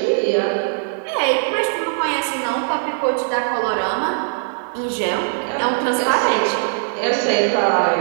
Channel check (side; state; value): left; silent; digital silence